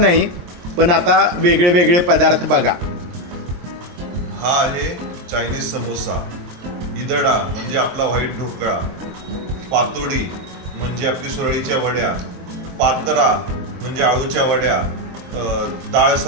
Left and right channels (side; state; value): left; late; 23 ms